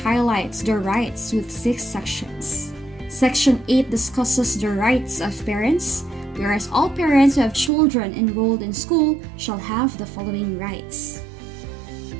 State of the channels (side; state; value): left; drops out; at 7.7 s